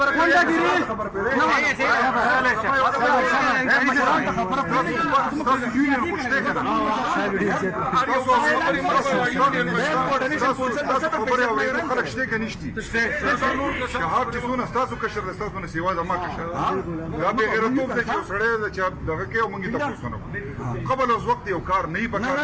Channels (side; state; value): both; identical; correlation 1.00